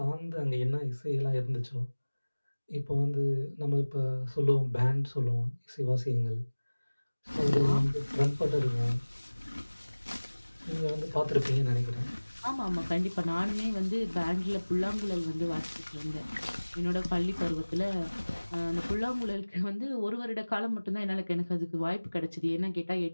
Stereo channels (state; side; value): inverted; both; correlation -1.00